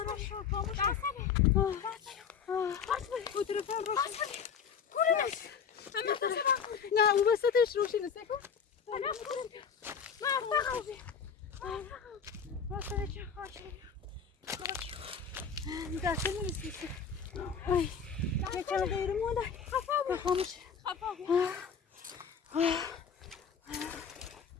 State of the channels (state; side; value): quieter; right; 6.6 dB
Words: را شکر خاموش کن تلفن روشن نه او وسطش روشن سکن دسته نیستی یه چند دقیقه مونده خاموش